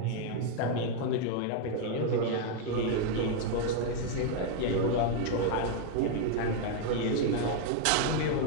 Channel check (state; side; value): different; both; correlation 0.00